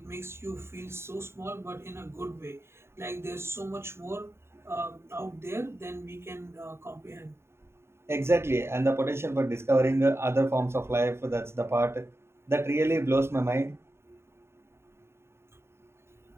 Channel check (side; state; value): left; late; 0.12 ms